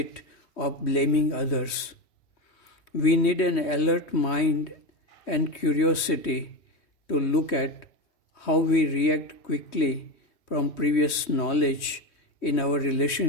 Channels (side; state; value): right; late; 3.2 ms